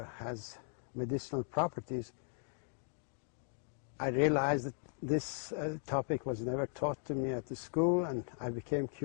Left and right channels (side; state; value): right; silent; 53 dB below the other